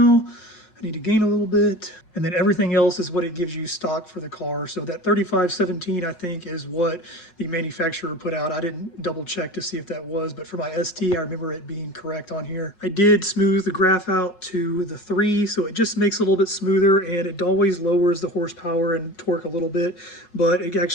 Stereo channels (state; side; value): late; right; 5.4 ms